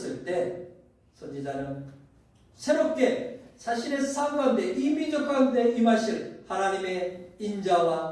때 선지자는 새롭게 자신의 삶 가운데 이 민족 가운데 임하실 하나님의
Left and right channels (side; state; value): both; identical; correlation 1.00